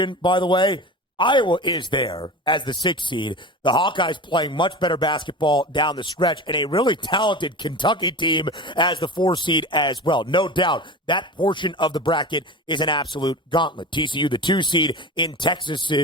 by the way, Iowa is there as the 6th seed. The Hawkeyes playing much better basketball down the stretch, and a really talented Kentucky team as the 4 seed as well. No doubt that portion of the bracket is an absolute gauntlet. TCU, the 2 seed in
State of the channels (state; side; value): normal; both; correlation 0.30